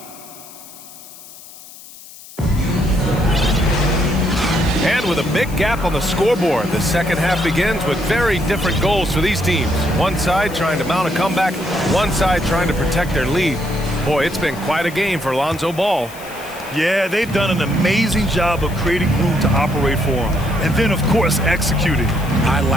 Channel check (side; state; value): left; noise; hiss, 18 dB below the sound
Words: And with a big gap on the scoreboard, the second half begins with very different goals for these teams. One side trying to mount a comeback, one side trying to protect their lead. Boy, it's been quite a game for Lonzo Ball. Yeah, they've done an amazing job of creating room to operate for him. And then, of course, executing. I